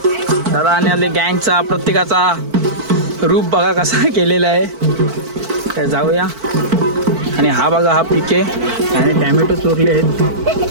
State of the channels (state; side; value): late; left; 4.5 ms